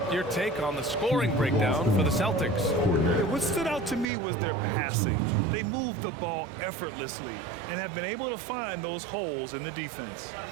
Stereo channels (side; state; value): left; drops out; at 4.0 s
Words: your take on the scoring breakdown for the Celtics. What stood out to me was their passing. They moved the ball effortlessly and have been able to find those holes in the defense.